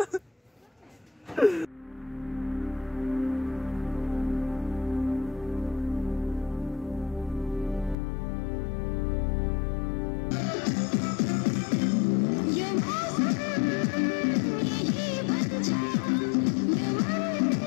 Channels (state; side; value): drops out; right; at 8.0 s